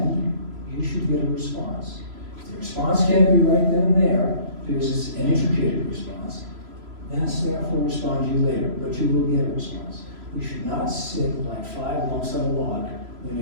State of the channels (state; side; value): late; left; 3.0 ms